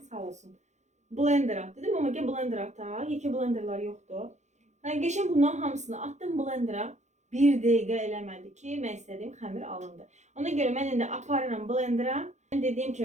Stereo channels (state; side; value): late; left; 0.34 ms